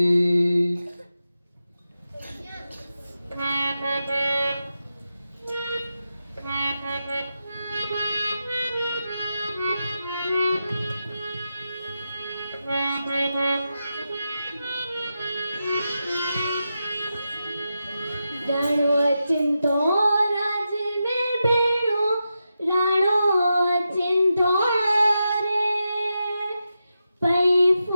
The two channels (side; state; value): both; inverted; correlation -0.89